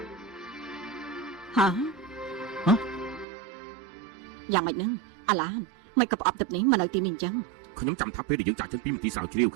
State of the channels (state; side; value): drops out; left; at 3.2 s